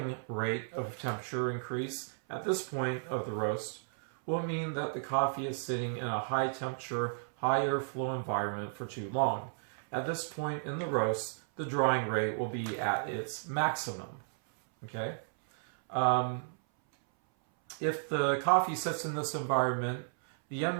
rate of temperature increase at this point of the roast will mean that the coffee is sitting in a high temperature, high airflow environment for too long. At this point in the roast, the drying rate will be at its maximum. Okay? If the coffee sits in this environment, the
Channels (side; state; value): left; silent; 55 dB below the other